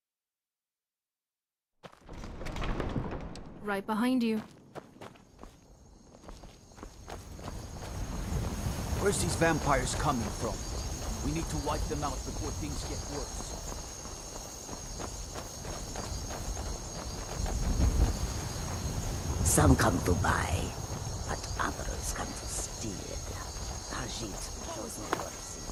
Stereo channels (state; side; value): identical; both; correlation 1.00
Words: Right behind you. Where's these vampires coming from? We need to wipe them out before things get worse. Some come to buy, but others come to steal. Ajit shows no mercy.